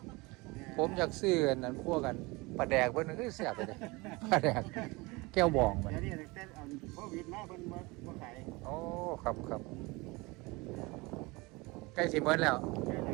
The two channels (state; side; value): quieter; left; 24.3 dB